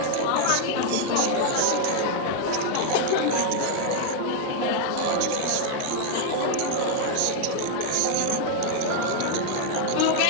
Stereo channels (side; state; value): both; different; correlation 0.00